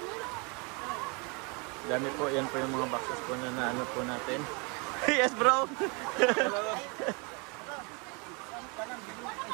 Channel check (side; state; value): left; quieter; 31.6 dB